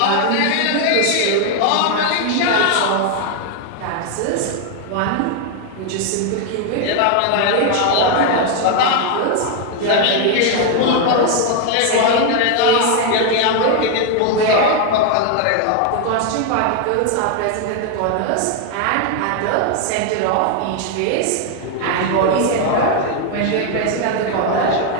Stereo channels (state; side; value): different; both; correlation 0.01